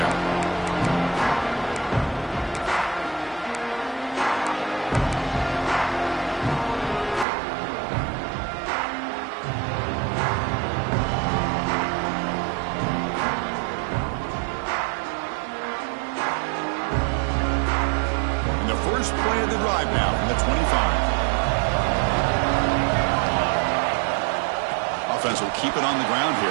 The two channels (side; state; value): left; drops out; at 7.2 s